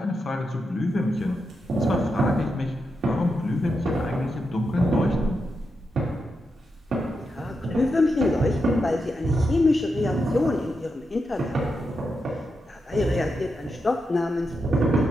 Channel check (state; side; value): normal; both; correlation 0.86